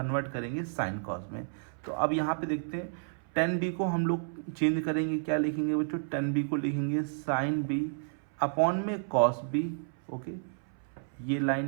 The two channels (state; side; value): silent; left; 57 dB below the other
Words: करेंगे साइन कॉस में। तो अब यहाँ पे देखते हैं, tan b को हम लोग चेंज करेंगे, क्या लिखेंगे बच्चों, tan b को लिखेंगे साइन b अपॉन में कॉस b। ओके, ये